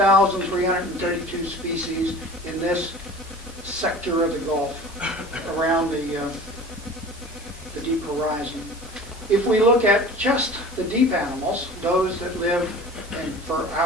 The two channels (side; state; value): both; normal; correlation 0.41